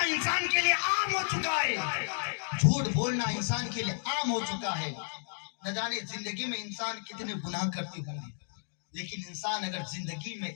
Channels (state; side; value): silent; right; digital silence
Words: انسان کے لیے عام ہو چکا ہے، جھوٹ بولنا انسان کے لیے عام ہو چکا ہے. نہ جانے زندگی میں انسان کتنے گناہ کرتے ہوں گے، لیکن انسان اگر زندگی میں